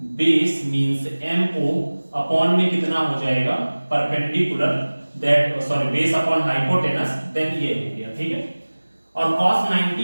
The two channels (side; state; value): both; inverted; correlation -1.00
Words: base means MO upon में कितना हो जाएगा perpendicular that sorry base upon hypotenuse, देन ये हो गया, ठीक है। और cos